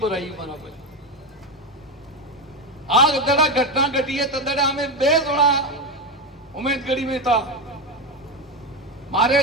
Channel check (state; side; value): normal; both; correlation 0.14